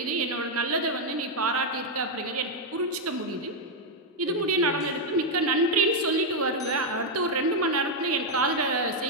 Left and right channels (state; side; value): normal; both; correlation 0.01